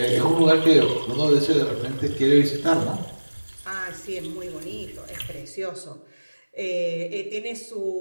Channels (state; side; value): inverted; both; correlation -1.00